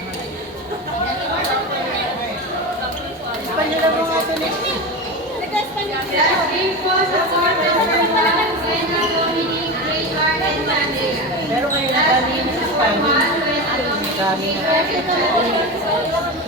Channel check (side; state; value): both; normal; correlation 0.22